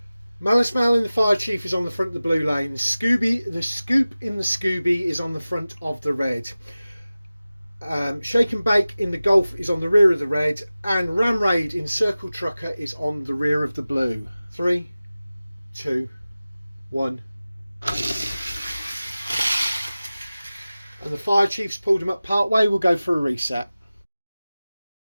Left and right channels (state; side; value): inverted; both; correlation -0.96